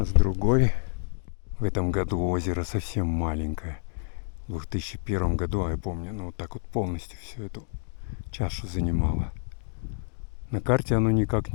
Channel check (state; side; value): silent; right; digital silence